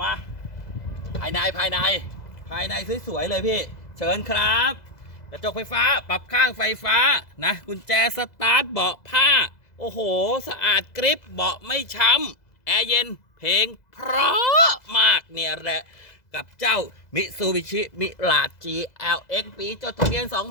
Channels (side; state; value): right; late; 2.0 ms